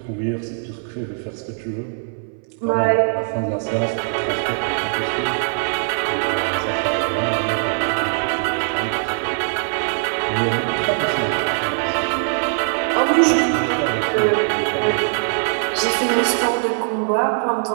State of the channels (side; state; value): left; silent; 61 dB below the other